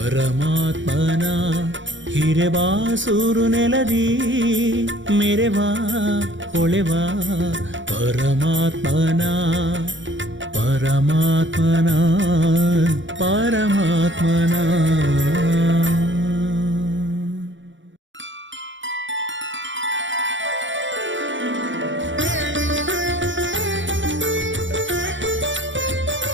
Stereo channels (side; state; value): left; late; 0.55 ms